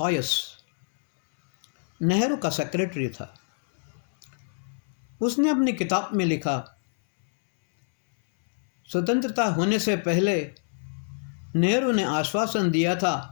नेहरू का सेक्रेटरी था। उसने अपनी किताब में लिखा, स्वतंत्रता होने से पहले नेहरू ने आश्वासन दिया था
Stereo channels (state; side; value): silent; right; 61 dB below the other